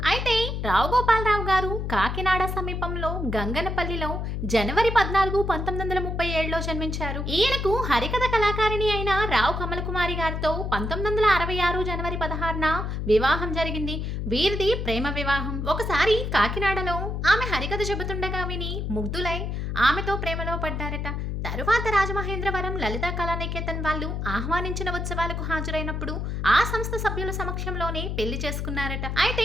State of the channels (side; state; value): left; noise; hum, 3 dB below the sound